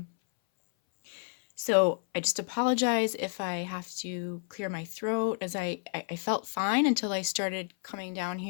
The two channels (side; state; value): right; silent; 57 dB below the other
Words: So I just apologize if I have to clear my throat, as I felt fine until I started coming down